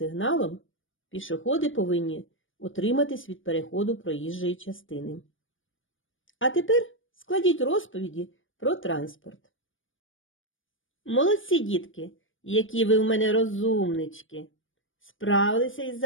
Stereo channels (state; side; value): late; right; 0.57 ms